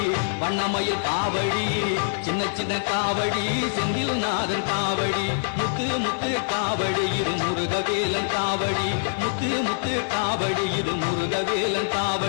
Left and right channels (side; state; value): right; silent; 62 dB below the other